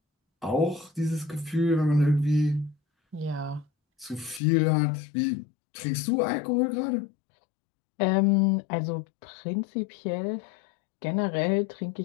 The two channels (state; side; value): drops out; right; at 4.4 s